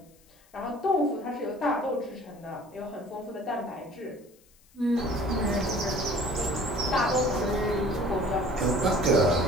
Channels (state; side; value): noise; left; hiss, 30 dB below the sound